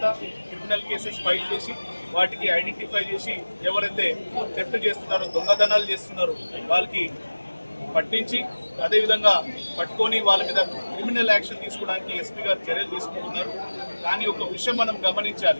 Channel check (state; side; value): inverted; both; correlation -1.00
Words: క్రిమినల్ కేసెస్ ఫైల్ చేసి వాటికి ఐడెంటిఫై చేసి ఎవరైతే థెఫ్ట్ చేస్తున్నారో, దొంగతనాలు చేస్తున్నారో వాళ్ళకి పట్టించి అదేవిధంగా పట్టుకొని వాళ్ళ మీద క్రిమినల్ యాక్షన్ తీసుకోవడానికి ఎస్పీ గారు చర్యలు తీసుకుంటున్నారు. కానీ ఒక విషయం మనం